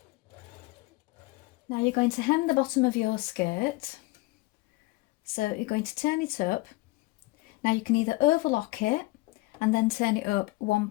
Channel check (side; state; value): right; quieter; 21.4 dB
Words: Now you're going to hem the bottom of your skirt. So you're going to turn it up. Now you can either overlock it and then turn it up